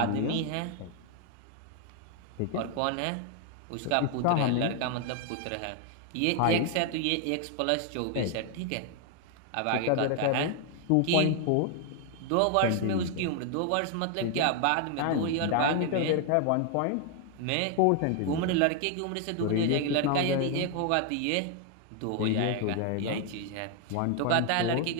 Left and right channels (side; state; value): both; different; correlation 0.00